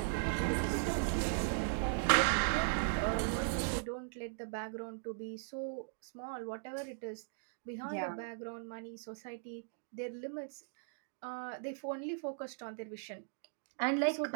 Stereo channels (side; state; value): left; silent; digital silence